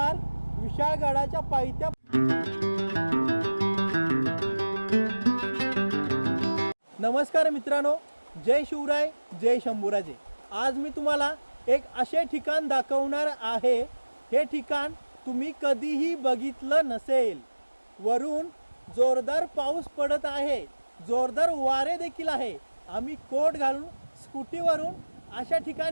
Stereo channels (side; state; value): both; inverted; correlation -1.00